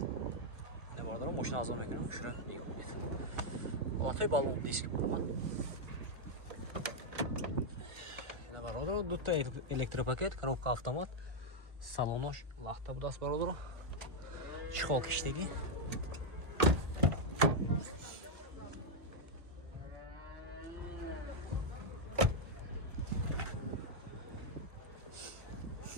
Ина бародаро мошин азон мекунам, хушро нигоҳ кунед. Ҳолатҳои балон диск марама. Ина бародаро дута электропакет, коробка автомат, салонош лахта будааст бародаро. Чехол киштагӣ.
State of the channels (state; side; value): late; left; 1.3 ms